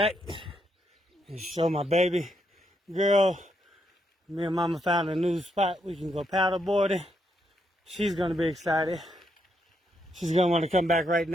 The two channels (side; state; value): both; normal; correlation 0.78